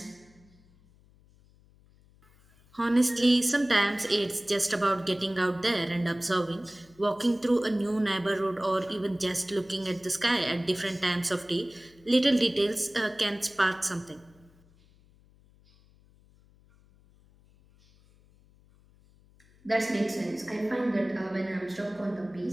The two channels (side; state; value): left; noise; hum, 29 dB below the sound